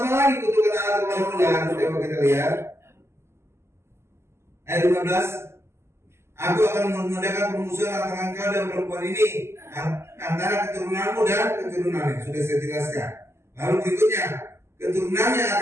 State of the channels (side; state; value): left; late; 0.13 ms